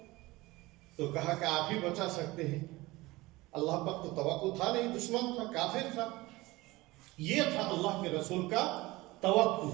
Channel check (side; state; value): left; quieter; 20.6 dB